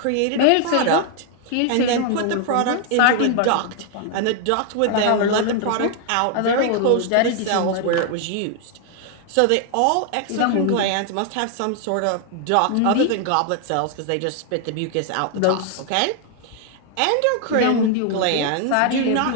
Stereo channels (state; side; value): different; both; correlation 0.00